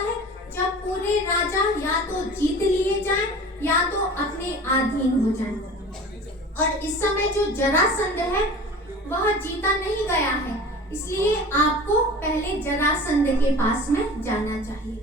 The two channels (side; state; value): both; normal; correlation 0.39